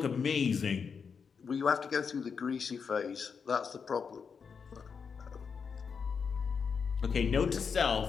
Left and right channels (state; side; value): quieter; right; 6.0 dB